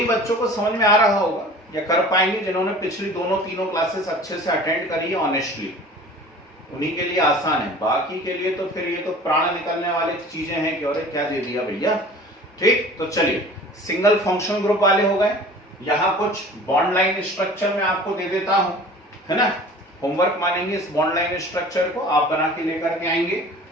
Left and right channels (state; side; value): normal; both; correlation 0.43